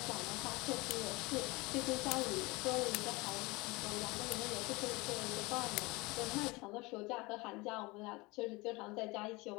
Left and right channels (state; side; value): quieter; right; 23.9 dB